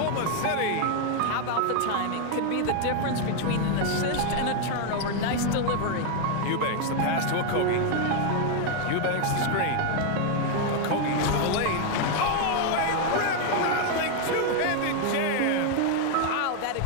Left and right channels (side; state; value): both; different; correlation 0.00